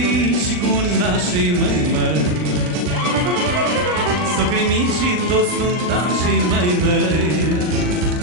și cu nașii, măi. Socrii mici și toți nuntașii, măi.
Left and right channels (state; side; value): late; left; 39 ms